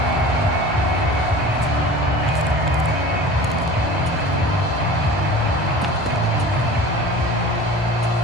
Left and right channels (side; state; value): both; normal; correlation 0.39